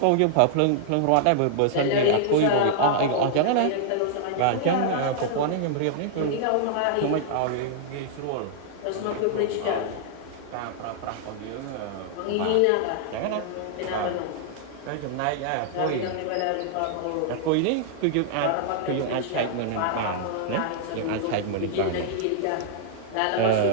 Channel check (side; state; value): both; different; correlation -0.01